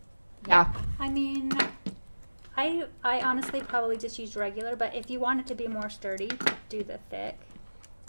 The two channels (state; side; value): inverted; both; correlation -1.00